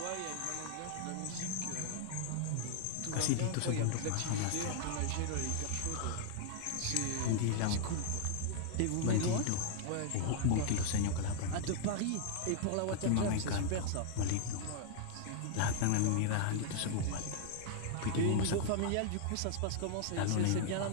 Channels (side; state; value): both; different; correlation 0.00